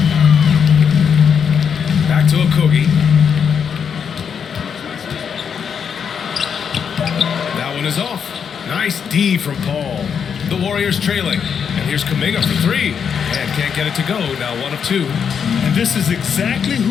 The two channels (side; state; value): right; quieter; 7.1 dB